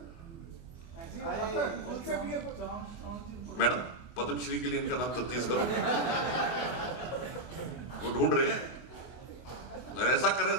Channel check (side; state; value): right; late; 24 ms